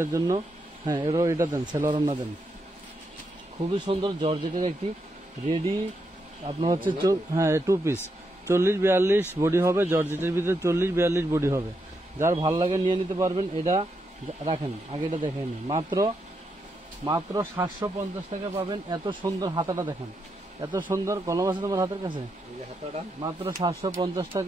জন্য, হ্যাঁ এটা দেন, সেলোয়ারটা দেন। খুবই সুন্দর জর্জেটের একটি রেডি আপনার হচ্ছে, হ্যাঁ 2 পিস 40-42 বডি হবে। জর্জেটের ভিতরে 40-42 বডি হবে। যার ভাল লাগে নিয়ে নিতে পারবেন। এটা রাখেন, আগে এটা দেখেন। মাত্র 750 টাকা পাবেন। এত সুন্দর হাতাটা দেখেন, এত সুন্দর। কলম আছে তোমার হাতের কাছে? মাত্র 750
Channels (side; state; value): both; normal; correlation 0.82